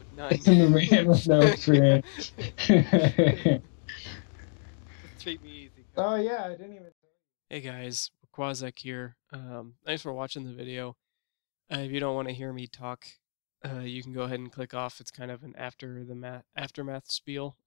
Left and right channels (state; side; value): silent; right; 59 dB below the other